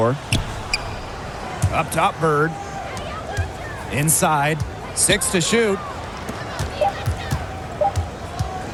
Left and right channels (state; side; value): identical; both; correlation 1.00